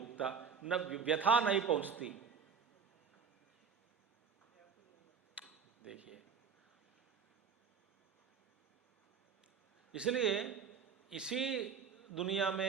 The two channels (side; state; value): left; quieter; 6.4 dB